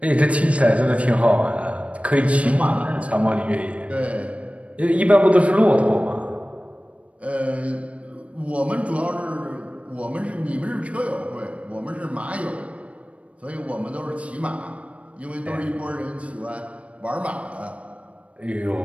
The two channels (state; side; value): late; left; 0.064 ms